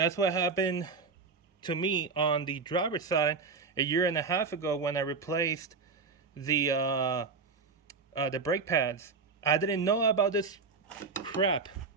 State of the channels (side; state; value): left; quieter; 4.7 dB